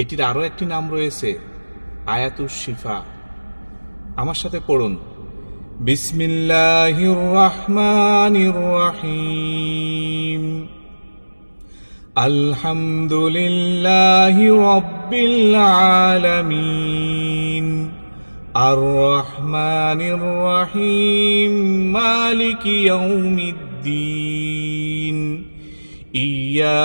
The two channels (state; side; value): inverted; both; correlation -1.00